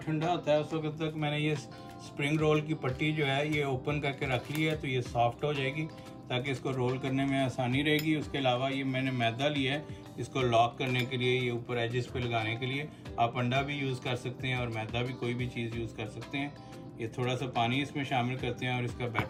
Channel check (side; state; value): both; identical; correlation 1.00